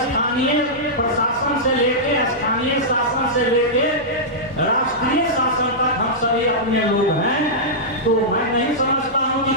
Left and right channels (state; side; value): normal; both; correlation -0.12